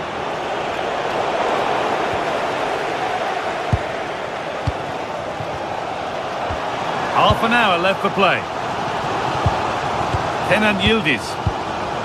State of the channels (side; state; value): both; identical; correlation 1.00